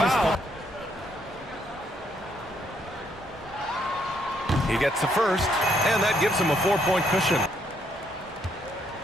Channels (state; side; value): normal; both; correlation 0.72